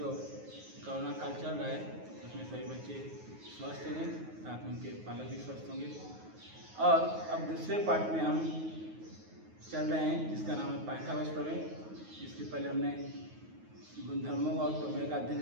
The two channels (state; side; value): late; left; 9.4 ms